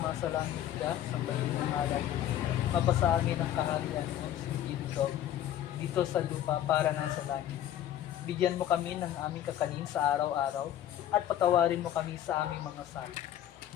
ka, sambahin ng ngalan. Mapasa amin ang kaharian mo, sundin ko, dito sa lupa para nga sa langit. Bigyan mo kami ng aming kakanin sa araw-araw at patawarin mo kami sa aming mga sala,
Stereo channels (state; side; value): quieter; right; 11.5 dB